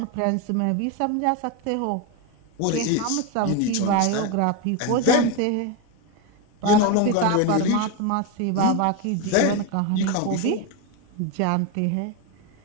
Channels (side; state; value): both; different; correlation 0.02